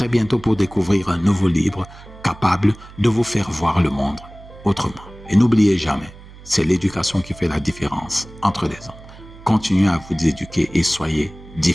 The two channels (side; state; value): right; noise; hum, 19 dB below the sound